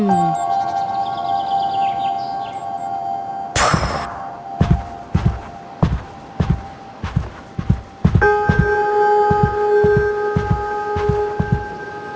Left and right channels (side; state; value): both; identical; correlation 1.00